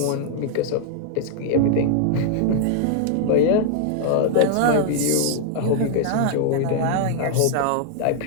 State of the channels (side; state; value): both; different; correlation 0.00